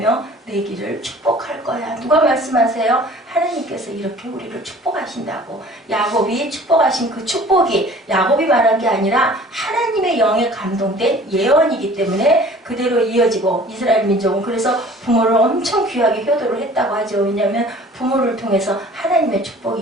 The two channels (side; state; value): both; normal; correlation 0.48